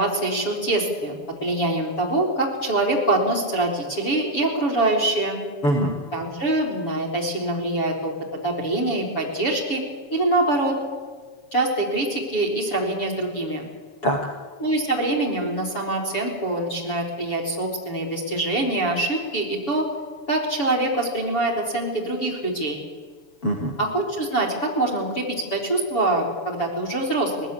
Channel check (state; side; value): late; right; 7.0 ms